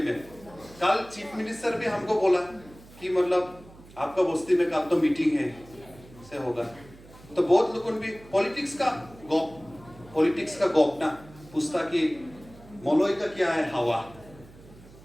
में। कल चीफ मिनिस्टर भी हमको बोला कि मतलब आपका बस्ती में कल तो मीटिंग है से होगा, तो बहुत लोगों भी पॉलिटिक्स का गॉप ना पूछता कि मोलोई का क्या है हवा,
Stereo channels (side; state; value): right; noise; hum, 22 dB below the sound